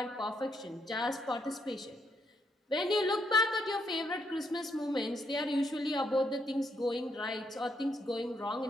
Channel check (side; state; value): both; normal; correlation 0.76